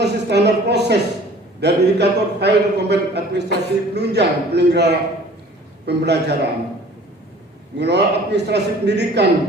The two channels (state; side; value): normal; both; correlation 0.49